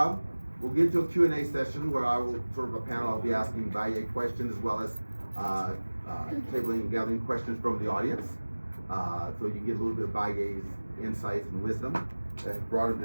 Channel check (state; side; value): inverted; both; correlation -1.00